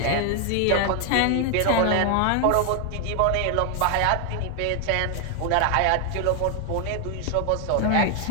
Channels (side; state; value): both; different; correlation 0.00